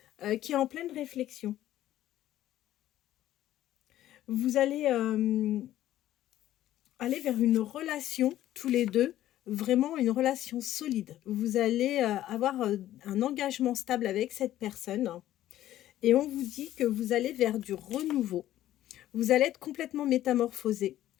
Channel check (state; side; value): quieter; right; 13.3 dB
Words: qui est en pleine réflexion. Vous allez aller vers une relation, tous les deux, vraiment une relation solide. Vous allez avoir un engagement stable avec cette personne et on vous dit que vous allez vers du renouveau. Vous allez être complètement métamorphosé.